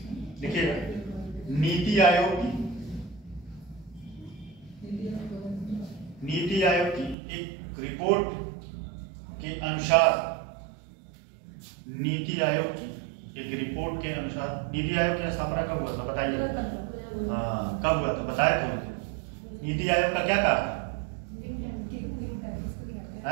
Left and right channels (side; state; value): left; drops out; at 7.2 s